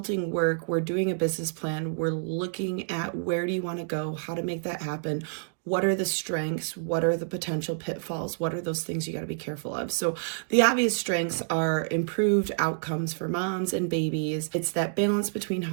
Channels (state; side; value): silent; left; digital silence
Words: work, we're doing a business plan, we're looking at where do you want to go, how to make that happen. What are the strengths? What are the potential pitfalls? What are those things you got to be careful of? So the obvious strengths are improved outcomes for moms and babies. It's that balance between